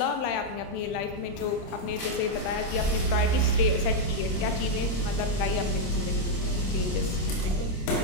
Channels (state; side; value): late; right; 26 ms